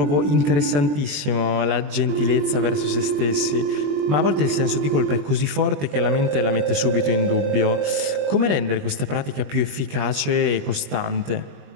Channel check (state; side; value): late; left; 20 ms